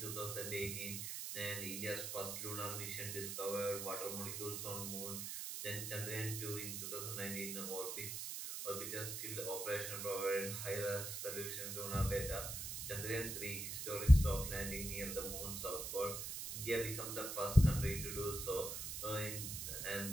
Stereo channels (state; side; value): noise; right; hiss, 4 dB below the sound